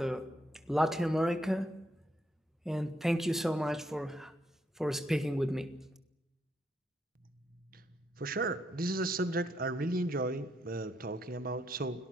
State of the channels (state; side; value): normal; both; correlation 0.76